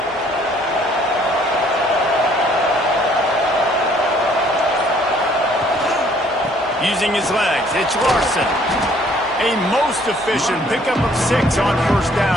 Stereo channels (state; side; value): normal; both; correlation 0.61